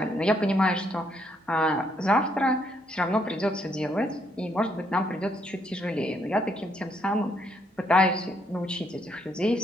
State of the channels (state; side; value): normal; both; correlation 0.73